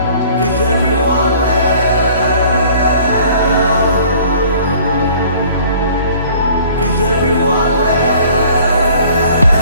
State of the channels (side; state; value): both; inverted; correlation -0.53